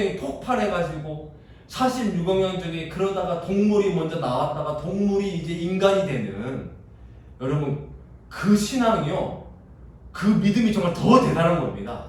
폭발해가지고 46억 년 전에 그러다가 동물이 먼저 나왔다가 동물이 이제 인간이 되는, 여러분 그 신앙이요, 그 믿음이 정말 더 대단한 겁니다.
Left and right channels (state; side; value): identical; both; correlation 1.00